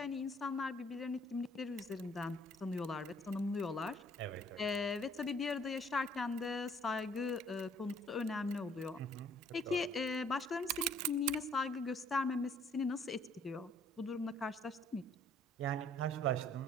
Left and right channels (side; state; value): both; normal; correlation 0.61